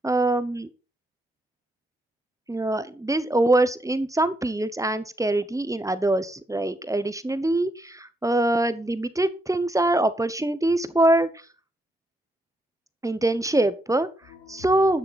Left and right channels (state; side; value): normal; both; correlation 0.78